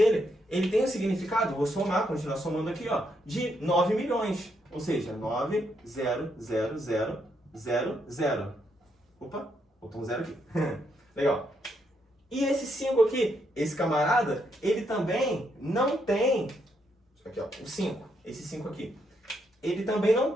Ele tem o significado, vou somar, continuar somando aqui, ó, de 9 milhões. Ou seja, 9, 0, 0, 0, 0, 0. Opa, botou um 0 aqui. Legal. E esse 5 aqui, esse camarada, ele também não tem... Aqui, ó, o 5. Esse 5 aqui. Ele também não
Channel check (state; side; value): normal; both; correlation 0.77